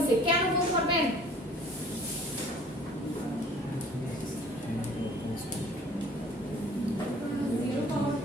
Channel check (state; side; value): normal; both; correlation 0.51